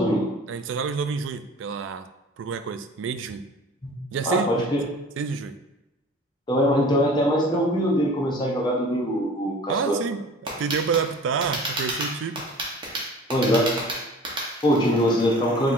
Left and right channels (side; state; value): both; normal; correlation 0.44